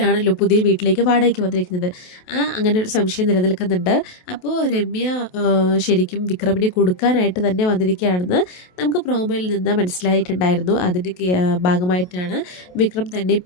പുതിയ വീട്ടിലേക്ക് വാടകയ്ക്ക് വന്നിരിക്കുന്നത്. അങ്ങനെ ഒരു സംശയം നിലനിൽക്കുന്നുണ്ട്. അപ്പോൾ രമ്യ ശരിക്കും വിക്രമിനെ കൊടുക്കാനായിട്ട് തന്നെ വന്നിരിക്കുകയാണെന്ന് നമുക്ക് പ്രോമോയിൽ നിന്ന് മനസ്സിലായിട്ടുണ്ടായിരുന്നു. അതിൻ്റെ ഭാഗമായിട്ടാണ് വിക്രം തന്നെ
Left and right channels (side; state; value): right; late; 28 ms